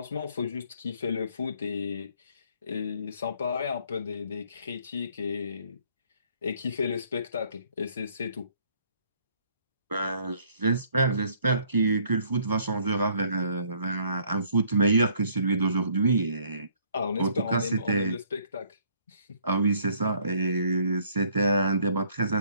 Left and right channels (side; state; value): both; inverted; correlation -0.62